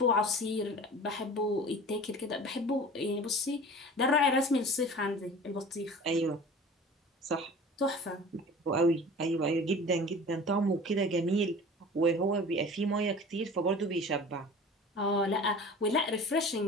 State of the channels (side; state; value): both; normal; correlation 0.40